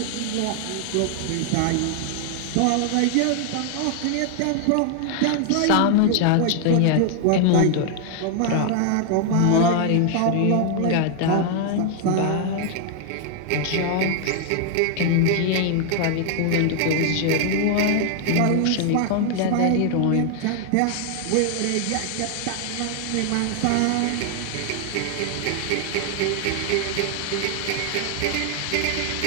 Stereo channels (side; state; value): both; different; correlation 0.00